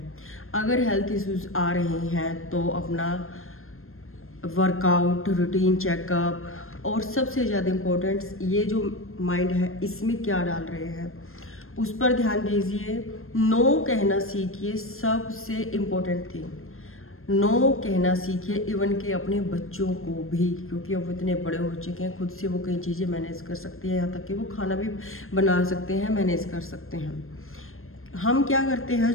अगर हेल्थ इश्यूज़ आ रहे हैं तो अपना वर्कआउट, रूटीन चेकअप, और सबसे ज़्यादा इम्पोर्टेंट ये जो माइंड है, इसमें क्या डाल रहे हैं उस पर ध्यान दीजिए। नो कहना सीखिए, सबसे इम्पोर्टेंट थिंग। नो कहना सीखिए, इवन के अपने बच्चों को भी, क्योंकि अब इतने बड़े हो चुके हैं, खुद से वो कई चीज़ें मैनेज कर सकती हैं, यहाँ तक कि वो खाना भी बना सकते हैं, मैनेज कर सकते हैं। हम क्या करते हैं,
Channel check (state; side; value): late; right; 0.61 ms